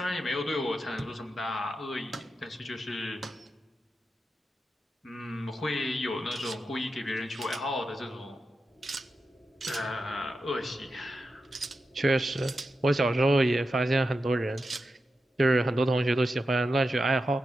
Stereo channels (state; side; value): normal; both; correlation 0.89